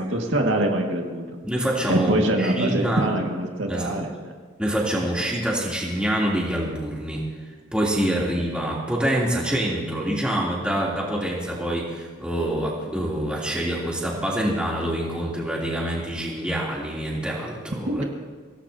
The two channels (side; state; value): both; normal; correlation 0.63